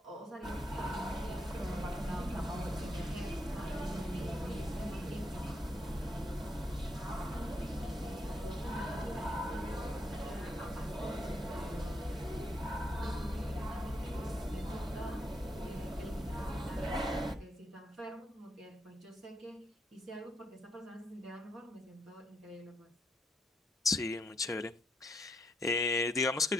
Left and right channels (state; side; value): normal; both; correlation 0.77